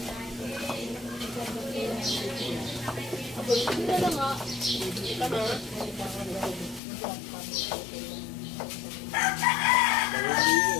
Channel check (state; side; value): drops out; right; at 6.8 s